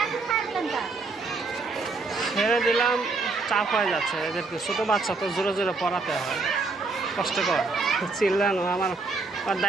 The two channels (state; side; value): quieter; left; 3.9 dB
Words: ছেড়ে দিলাম, চাপ হয়ে যাচ্ছে এদেরকে, ছোটো বাচ্চা তো জোরে জোরে পড়াতে হয়, কষ্টকর। চিল্লানো আমার